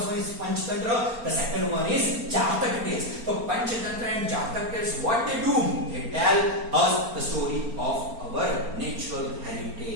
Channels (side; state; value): left; late; 4.3 ms